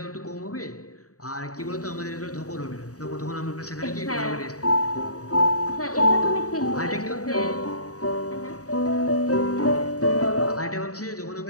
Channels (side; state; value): right; late; 0.66 ms